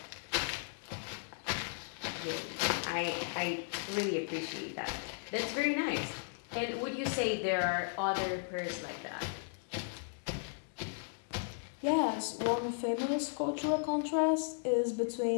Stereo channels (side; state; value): right; silent; digital silence